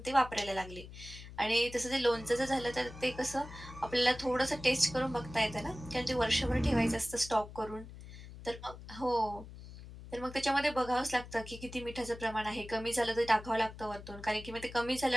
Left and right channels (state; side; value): noise; left; hum, 14 dB below the sound